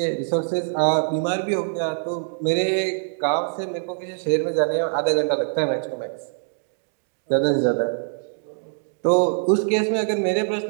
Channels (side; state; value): left; silent; digital silence